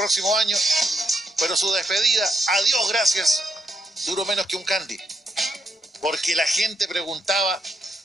año, pero su despedida, adiós, gracias, duró menos que un candy, porque la gente preguntaba,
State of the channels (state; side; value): normal; both; correlation 0.78